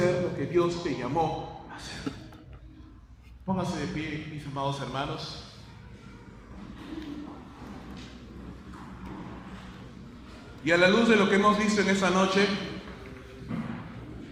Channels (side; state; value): both; identical; correlation 1.00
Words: lo que Dios te llamó a hacer. Pónganse de pie, mis amados hermanos. Y a la luz de lo que hemos visto en esta noche,